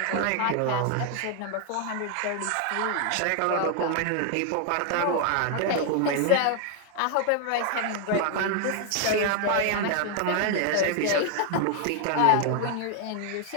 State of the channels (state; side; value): different; both; correlation 0.00